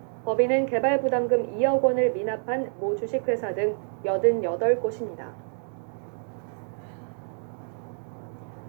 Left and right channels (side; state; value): left; silent; 60 dB below the other